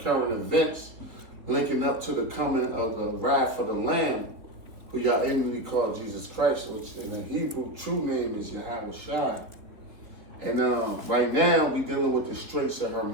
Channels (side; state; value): left; late; 3.7 ms